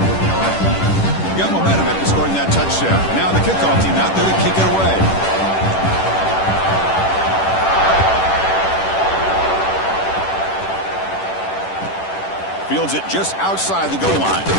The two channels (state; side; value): late; right; 10 ms